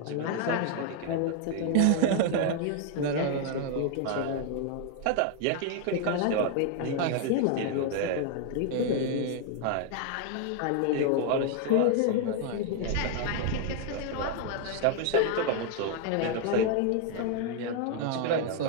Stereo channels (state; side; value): different; both; correlation 0.00